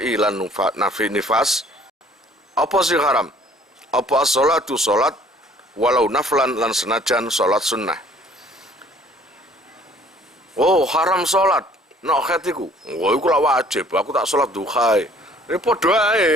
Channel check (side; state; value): both; normal; correlation 0.56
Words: nafi nifas. Apa sing haram? Apa as-sholatu sholat walau naflan lan senajan sholat sunnah. Oh, haram sholat nok haid iku. Wah, iku lak wajib, aku tak sholat duha. Ini padha